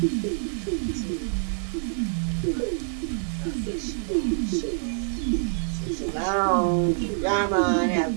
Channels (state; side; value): silent; left; 57 dB below the other